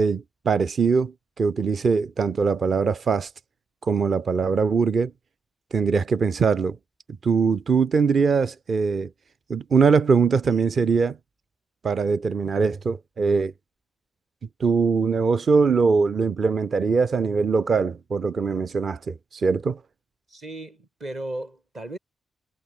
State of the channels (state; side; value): quieter; left; 4.8 dB